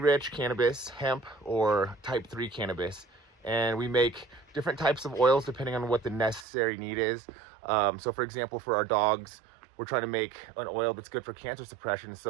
rich cannabis, hemp, or type 3 cannabis, and we make different types of oils depending on what the necessary need is. So for example, for our dogs, we're trying to make an oil that's good for cancer suppression.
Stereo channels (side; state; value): left; drops out; at 6.5 s